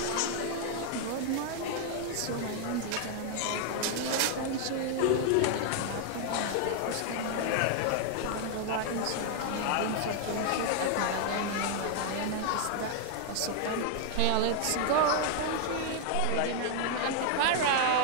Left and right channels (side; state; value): both; different; correlation 0.00